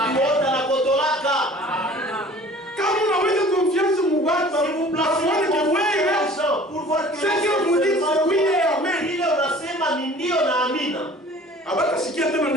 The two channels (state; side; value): normal; both; correlation 0.47